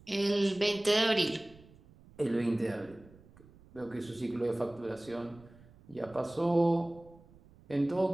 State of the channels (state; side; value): noise; right; rumble, 24 dB below the sound